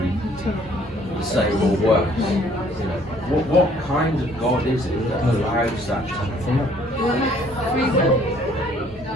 the same or worse? You know, what kind of God is it that allows that to happen? Free will.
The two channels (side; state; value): both; normal; correlation 0.60